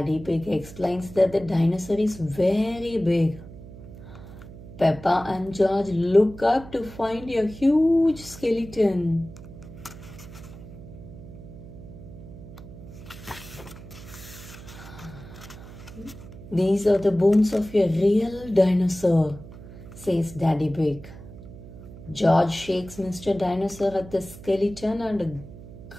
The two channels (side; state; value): right; noise; hum, 16 dB below the sound